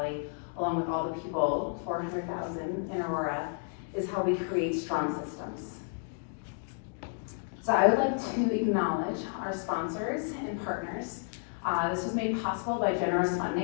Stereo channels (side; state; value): right; silent; 57 dB below the other